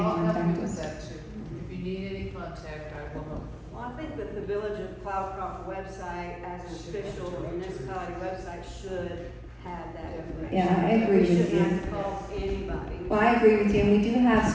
contact us. If you need any contact, I will help. Well, I think that the Village of Cloudcroft website, as an official municipality website, should have that information. Yeah, I agree with We shouldn't you. have to call anybody. Well, I agree with you, and we do have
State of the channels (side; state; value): both; identical; correlation 1.00